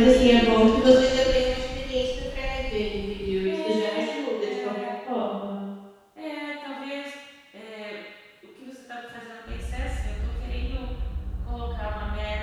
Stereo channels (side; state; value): both; identical; correlation 1.00